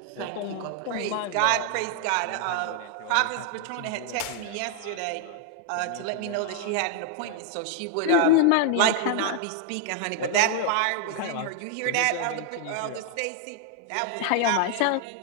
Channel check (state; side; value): different; both; correlation 0.00